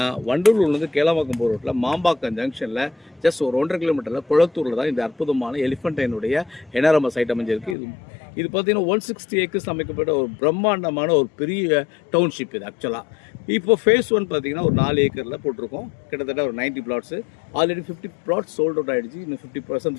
வண்டலூர்லேருந்து கேளம்பாக்கம் போகிற ரோட்டில் மாம்பாக்கம் ஜங்ஷனில் ஜஸ்ட் ஒரு 1.5 கிலோமீட்டரில் குளத்தூரில் தான் இந்த அற்புதமான எலிஃபண்டைனுடைய என்ஆர்எம்எஸ் சைட் அமைஞ்சிருக்கு. இது பார்த்தீங்கன்னா 160 ஏக்கர்ஸ் அமைக்கப்பட்ட ஒரு பிரம்மாண்டமான ஒரு பெரிய டவுன்ஷிப் இது ஆக்சுவலாக. இப்போ ஃபேஸ் 1 பார்த்தீங்கன்னா ஒரு 4 ஏக்கரில் போட்டிருக்கோம். கிட்டத்தட்ட ஒரு 90 flats. Already 50 flats sold out ஆகிடுச்சு. இன்னும்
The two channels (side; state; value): right; drops out; at 7.8 s